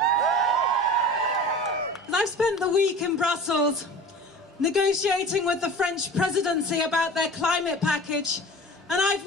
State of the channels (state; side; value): normal; both; correlation 0.38